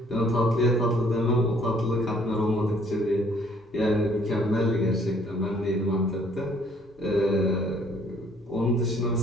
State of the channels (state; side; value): normal; both; correlation 0.61